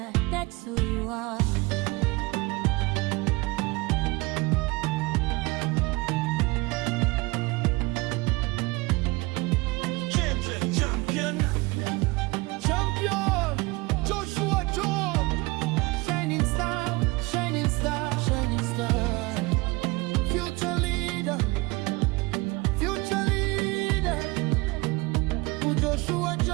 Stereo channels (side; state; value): left; quieter; 23.8 dB